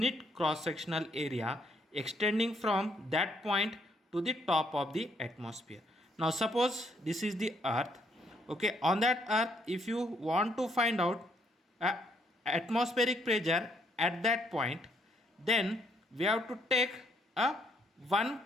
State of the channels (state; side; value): normal; both; correlation 0.71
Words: cross sectional area extending from that point to the top of the atmosphere. Now suppose this is the earth. Okay, on that earth, if you want to find out atmospheric pressure at that point, then we have to take a one